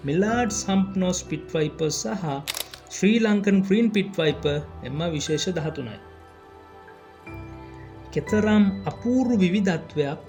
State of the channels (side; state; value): both; identical; correlation 1.00